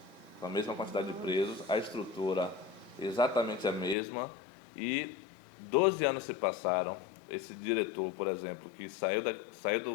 com a mesma quantidade de presos, a estrutura exatamente a mesma, e 12 anos se passaram. Esse diretor, por exemplo, que saiu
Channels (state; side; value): drops out; right; at 4.0 s